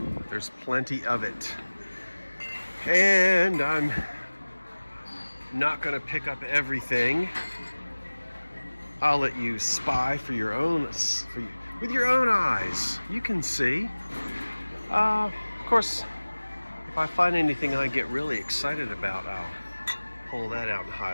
There's plenty of it. And I'm not going to pick up everything. I'll let you spy with your own eyes. You can see. Of course, if I find anything I get really excited about, I'll pull that out and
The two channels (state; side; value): inverted; both; correlation -1.00